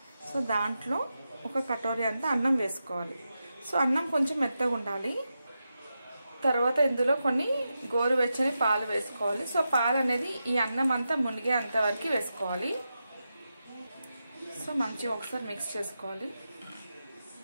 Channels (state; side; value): inverted; both; correlation -0.89